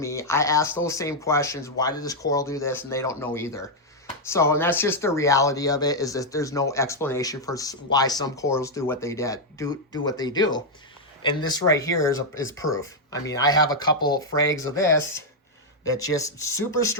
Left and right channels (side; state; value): both; normal; correlation -0.01